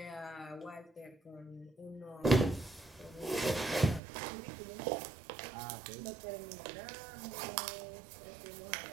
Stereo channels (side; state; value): left; drops out; at 4.0 s